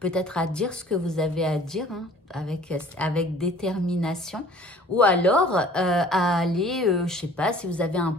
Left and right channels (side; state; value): both; normal; correlation 0.50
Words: à dire ce que vous avez à dire, hein, avec détermination, ou alors à aller, je sais pas, si vous avez un